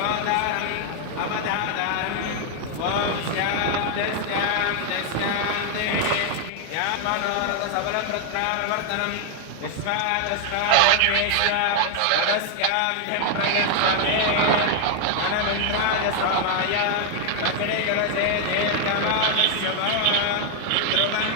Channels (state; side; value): different; both; correlation 0.00